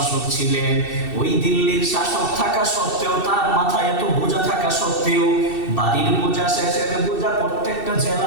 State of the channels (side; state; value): right; late; 2.7 ms